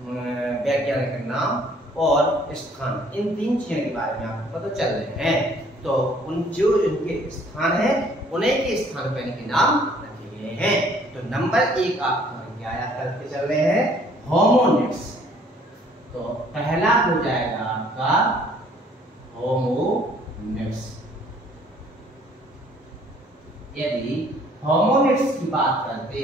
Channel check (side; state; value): both; normal; correlation 0.59